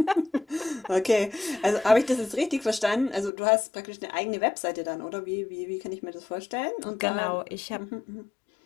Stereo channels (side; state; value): right; drops out; at 3.3 s